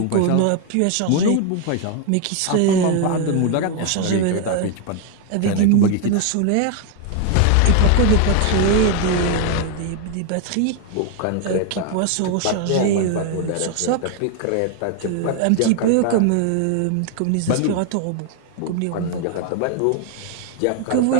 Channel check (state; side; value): different; both; correlation 0.01